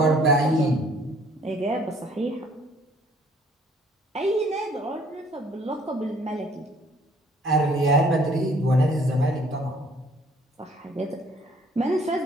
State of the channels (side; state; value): both; normal; correlation 0.59